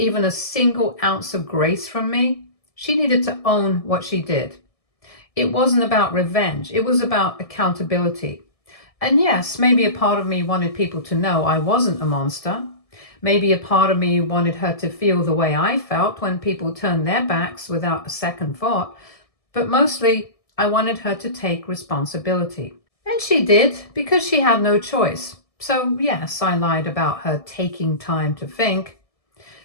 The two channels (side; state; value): right; late; 1.7 ms